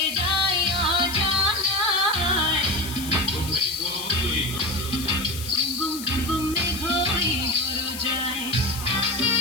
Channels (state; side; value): noise; left; hiss, 11 dB below the sound